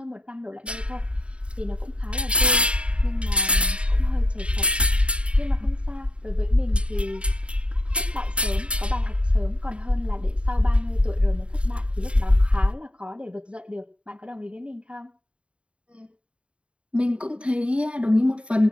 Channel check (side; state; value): left; late; 0.059 ms